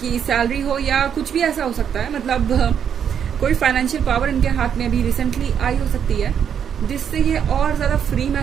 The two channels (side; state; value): left; quieter; 8.2 dB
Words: सैलरी हो या कुछ भी ऐसा हो सकता है। मतलब कोई फाइनेंशियल पावर इनके हाथ में अभी रिसेंटली आई हो सकती है जिससे ये और ज़्यादा फ्री